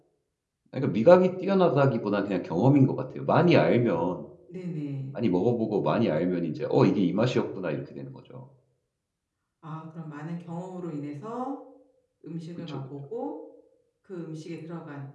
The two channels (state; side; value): identical; both; correlation 1.00